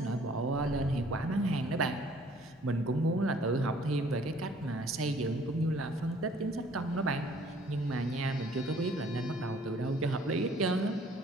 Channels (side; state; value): both; normal; correlation 0.57